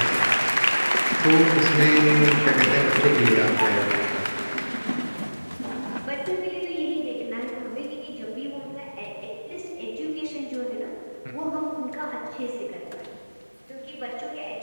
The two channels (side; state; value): both; inverted; correlation -1.00